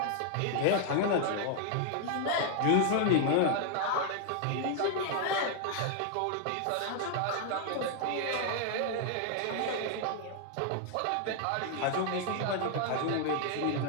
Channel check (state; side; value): different; both; correlation 0.00